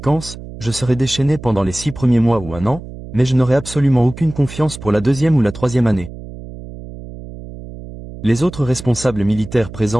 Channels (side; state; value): right; noise; hum, 13 dB below the sound